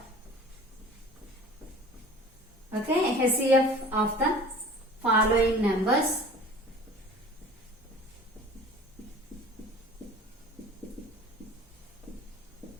Okay, HCF of the following numbers.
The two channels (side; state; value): both; normal; correlation 0.43